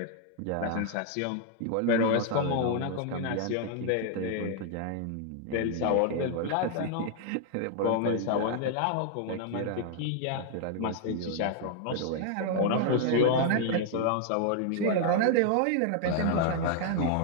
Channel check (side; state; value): both; different; correlation 0.00